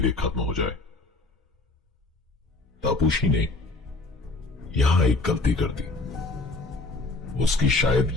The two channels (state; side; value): quieter; right; 3.2 dB